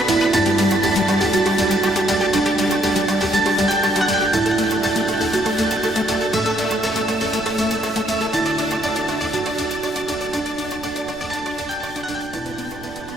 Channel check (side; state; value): right; noise; rumble, 18 dB below the sound